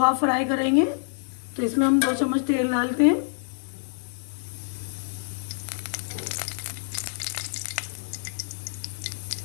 फ्राई करेंगे। तो इसमें हम 2 चम्मच तेल डालते हैं।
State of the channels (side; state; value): right; silent; digital silence